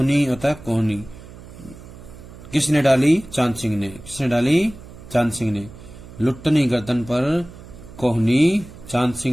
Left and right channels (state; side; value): noise; right; hum, 17 dB below the sound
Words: होता कोहनी। किसने डाली? चांद सिंह ने। किसने डाली? चांद सिंह ने। लुट्टन की गर्दन पर कोहनी चांद